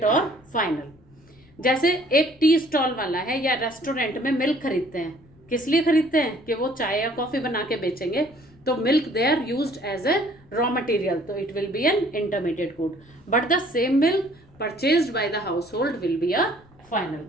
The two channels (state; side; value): noise; left; rumble, 28 dB below the sound